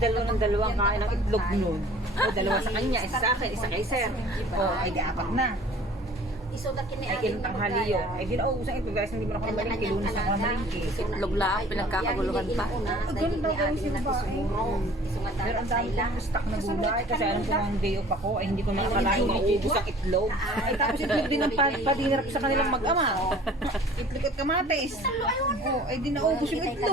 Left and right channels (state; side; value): normal; both; correlation 0.49